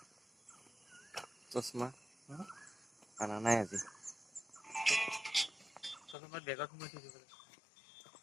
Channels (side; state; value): right; drops out; at 6.2 s